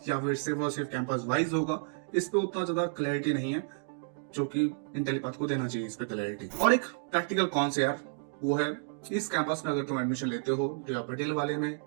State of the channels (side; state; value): left; silent; digital silence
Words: या फिर सिर्फ और सिर्फ कैंपस वाइज होगा, इस पे उतना ज्यादा क्लैरिटी नहीं है, जो कि इंटेलीपाथ को देना चाहिए इस पे क्लैरिटी। और एक प्रैक्टिकल कौन से यार, वो है इस कैंपस में अगर तुम एडमिशन लेते हो या पटेल वाले में